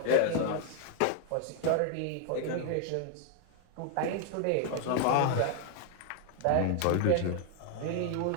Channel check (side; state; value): both; different; correlation 0.00